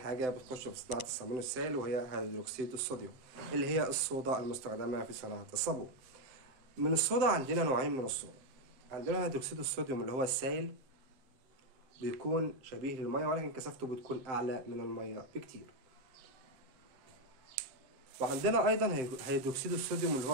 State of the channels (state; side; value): late; left; 7.7 ms